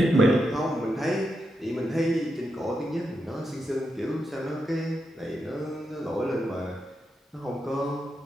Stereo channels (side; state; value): both; normal; correlation 0.85